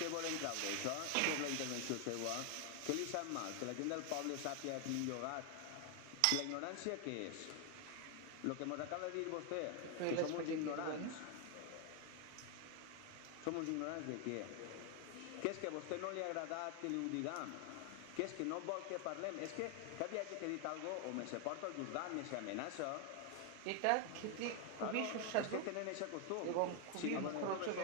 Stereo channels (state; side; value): different; both; correlation 0.01